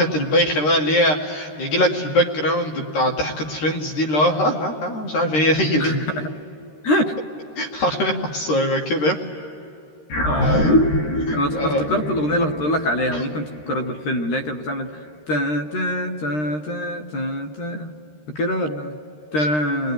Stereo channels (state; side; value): late; right; 13 ms